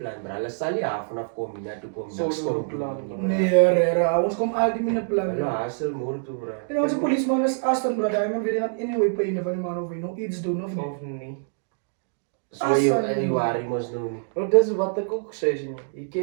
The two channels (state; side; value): silent; left; digital silence